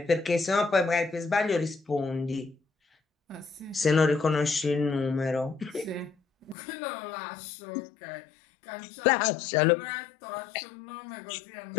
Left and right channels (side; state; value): right; drops out; at 6.6 s